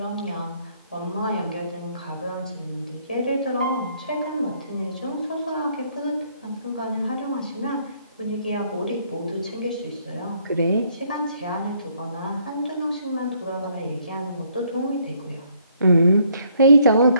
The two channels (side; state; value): both; inverted; correlation -0.68